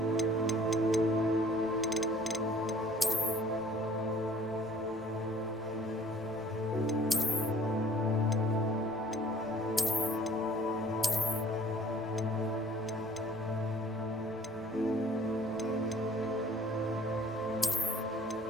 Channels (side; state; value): right; noise; rumble, 25 dB below the sound